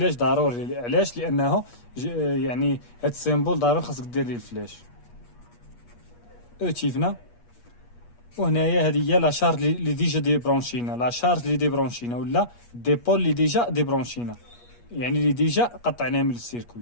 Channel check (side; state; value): right; late; 8.4 ms